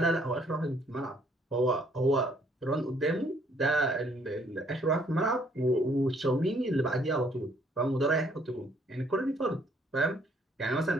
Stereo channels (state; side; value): normal; both; correlation 0.65